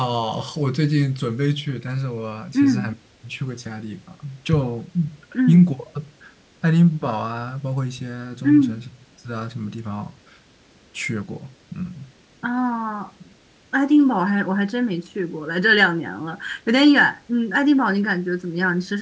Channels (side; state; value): both; identical; correlation 1.00